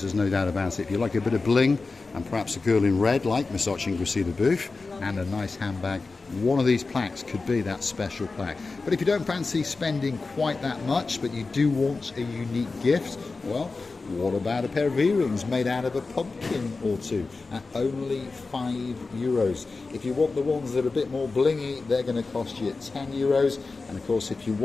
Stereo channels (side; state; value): right; quieter; 3.9 dB